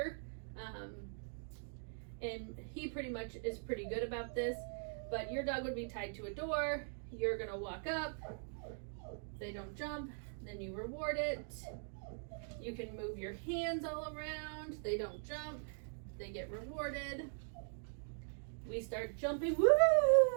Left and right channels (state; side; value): silent; left; digital silence